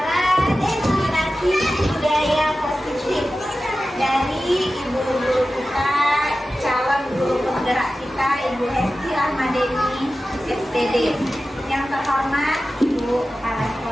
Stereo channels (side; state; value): both; normal; correlation 0.94